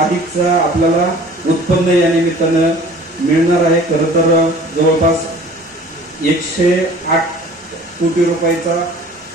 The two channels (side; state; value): both; normal; correlation 0.47